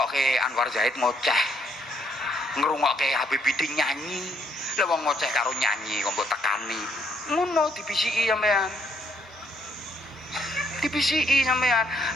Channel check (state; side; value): normal; both; correlation 0.70